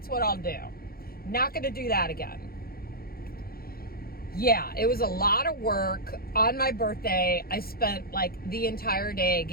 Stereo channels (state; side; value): late; right; 0.44 ms